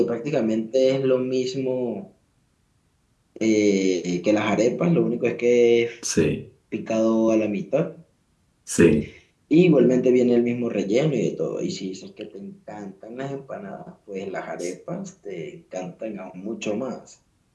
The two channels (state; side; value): identical; both; correlation 1.00